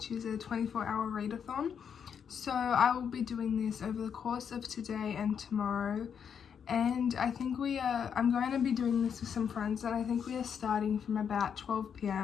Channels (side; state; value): right; quieter; 7.5 dB